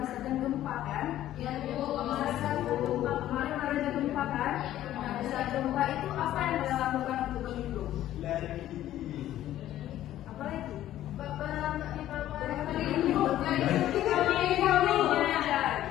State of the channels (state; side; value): quieter; right; 13.1 dB